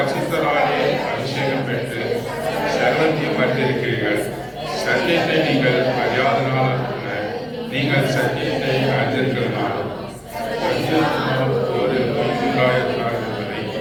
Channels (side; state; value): both; identical; correlation 1.00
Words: அபிஷேகம் பெற்று சர்வத்தையும் அறிந்திருக்கிறீர்கள். சத்தியத்தை நீங்கள் அறியாதனால் அல்ல, நீங்கள் சத்தியத்தை அறிந்திருக்கிறதுனாலும் ஒரு பொய்யுண்டாயிருக்கிறார் என்பதை